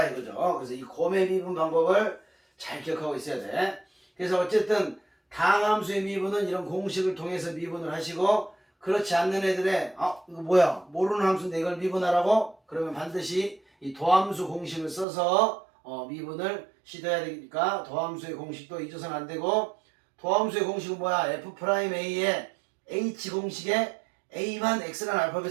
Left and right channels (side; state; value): left; drops out; at 15.1 s